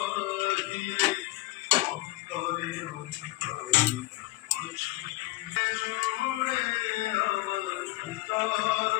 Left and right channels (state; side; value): quieter; right; 20.0 dB